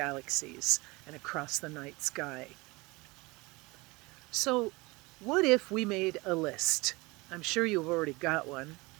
and across the night sky. So, what if we made a list? I'm sure you've already got one,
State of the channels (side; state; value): left; quieter; 24.0 dB